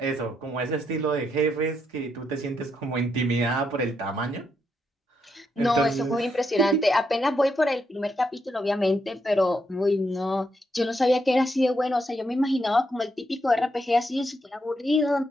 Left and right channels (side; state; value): both; normal; correlation 0.79